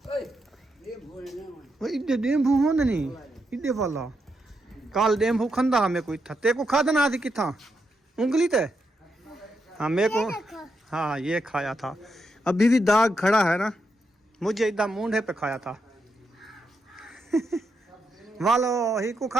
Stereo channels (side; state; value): both; normal; correlation 0.83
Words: इधे डेम्बू हो नहीं, इधे वाला काल डेम्बू खंदा हमें कोई था, ते को खादा ना थी किथा उंगली ते। हाँ मेरे को, हाँ ये खाया था, अभी भी दाग खड़ा है ना, मुझे इधर मूंढे पे खाया था। वालो ही को